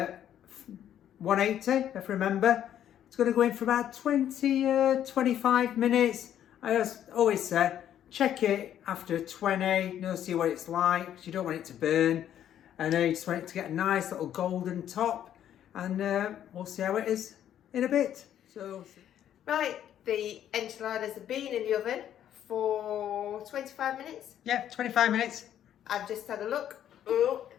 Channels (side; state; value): right; quieter; 10.6 dB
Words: 180, if I remember. It's going to go in for about 25 minutes. I always say, check it after 20, see what it's like, because you don't want it to burn. And you just want it to get a nice little golden top. And we'll see how it is in a bit. So, Right, the enchiladas have been in the oven for 25 minutes. yeah, 25 minutes. I've just had a look. Oh,